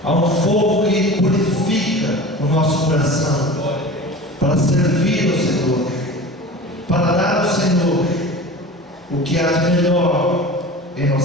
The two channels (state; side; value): normal; both; correlation 0.36